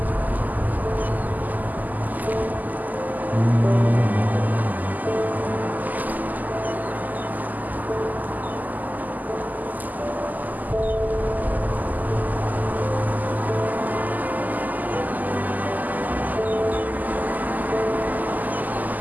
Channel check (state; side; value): late; left; 0.082 ms